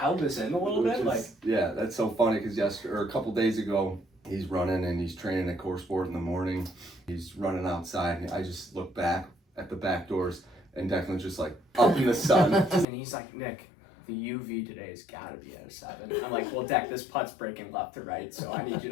this in a little bit? Yeah, that's so funny because a couple days ago, he's running and he's training at Core Sport in the morning. He's running outside, and I just look back at the back doors, and Declan's just like up in the sun. And he's like, Nick, the UV today has got to be at a 7. I'm like, well, Deck, this putt's breaking left to right, so I need you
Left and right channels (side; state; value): right; drops out; at 12.9 s